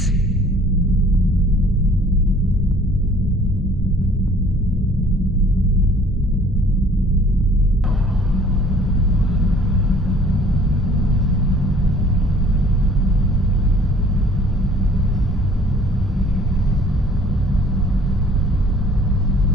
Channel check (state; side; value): normal; both; correlation 0.54